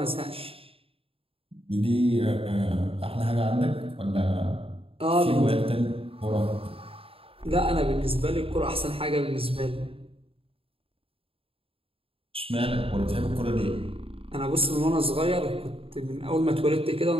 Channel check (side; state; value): left; late; 0.27 ms